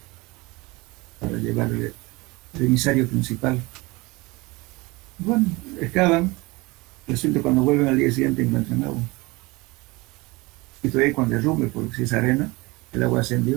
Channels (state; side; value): quieter; left; 23.4 dB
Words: para llevar el emisario principal. Bueno, excavan, resulta cuando vuelven al día siguiente encuentran agua. Y todavía cuando derrumbe, porque si es arena, el agua